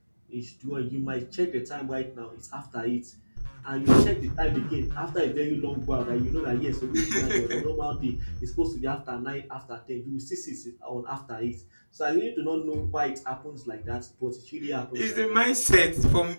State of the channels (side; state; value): both; inverted; correlation -1.00